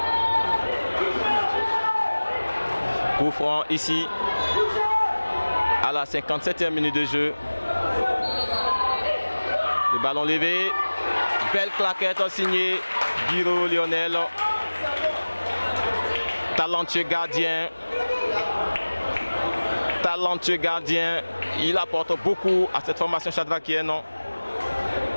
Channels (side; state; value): both; inverted; correlation -1.00